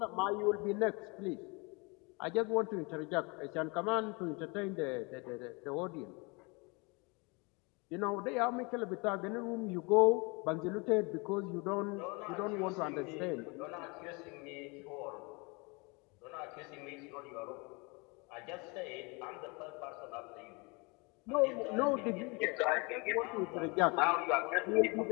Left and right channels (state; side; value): quieter; right; 29.0 dB